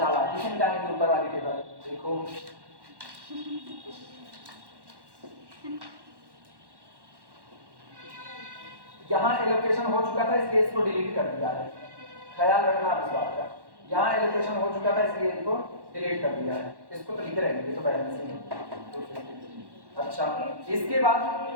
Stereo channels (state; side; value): late; left; 1.1 ms